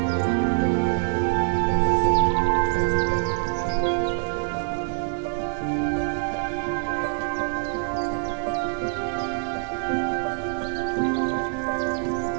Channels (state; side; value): silent; left; digital silence